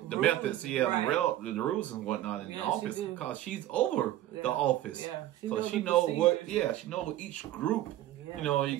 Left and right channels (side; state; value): left; quieter; 14.0 dB